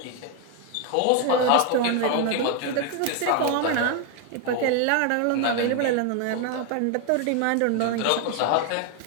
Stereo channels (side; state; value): both; different; correlation 0.01